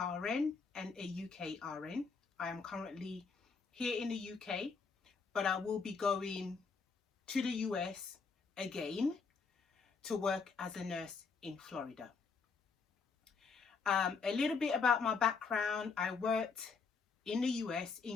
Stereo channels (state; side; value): quieter; right; 5.1 dB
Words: and a UK RN. I am currently here in the UK, but I will be going to the US again to work as a nurse in Florida. A little bit about my background. I worked in the US